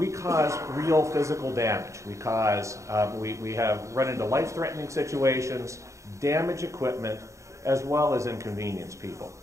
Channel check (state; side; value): late; left; 0.15 ms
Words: cause real physical damage. We have run into life-threatening situations, damage equipment, as well as inconvenience people.